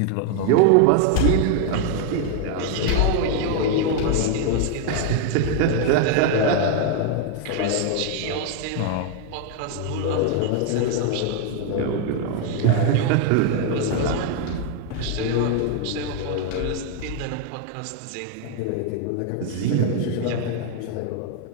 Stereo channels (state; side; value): different; both; correlation 0.00